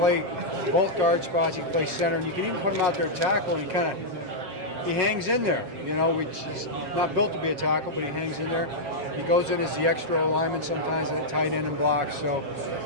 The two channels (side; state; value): left; late; 7.4 ms